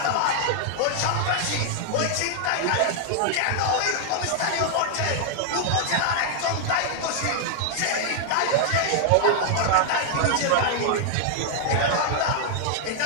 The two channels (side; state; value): both; different; correlation -0.01